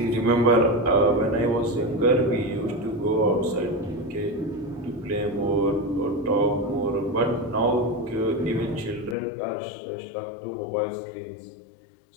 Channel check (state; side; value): drops out; right; at 9.2 s